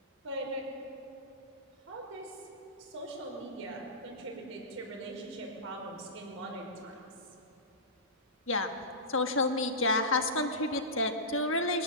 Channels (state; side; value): normal; both; correlation -0.19